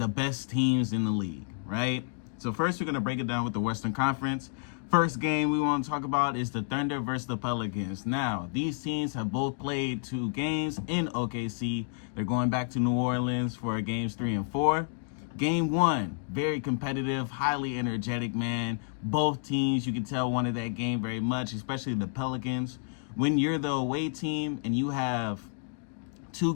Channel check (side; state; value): right; silent; digital silence